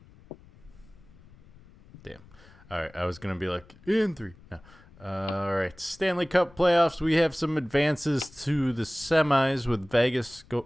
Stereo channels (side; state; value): left; noise; rumble, 24 dB below the sound